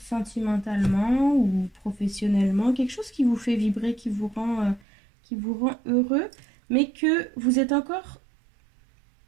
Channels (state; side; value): drops out; left; at 4.9 s